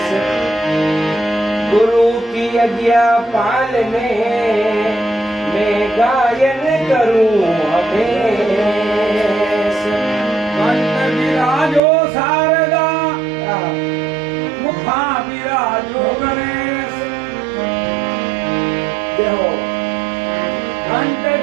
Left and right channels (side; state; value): left; drops out; at 11.8 s